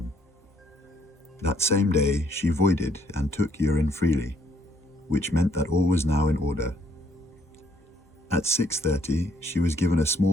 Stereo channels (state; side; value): normal; both; correlation 0.68